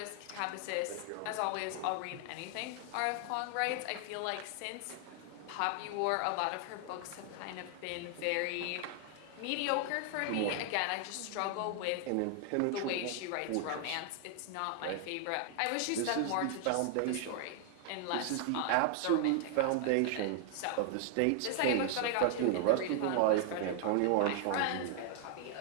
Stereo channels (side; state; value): both; different; correlation 0.00